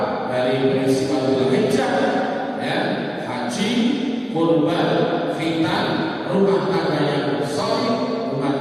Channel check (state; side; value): identical; both; correlation 1.00